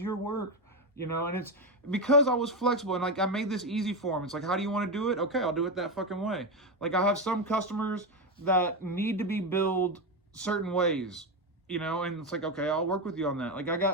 work, you know. And it's because I was flexible and like I made this easy for him. It's like, how do you want to do it? Okay, I'll do it that fucking way. Like I have some customers that need to be billed certain ways, you know, and it's like, okay, I'll work with you on that. Like I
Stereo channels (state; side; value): normal; both; correlation 0.12